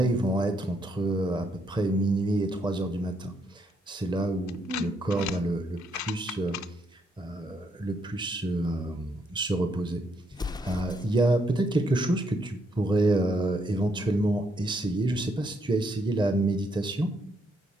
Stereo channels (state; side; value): normal; both; correlation 0.74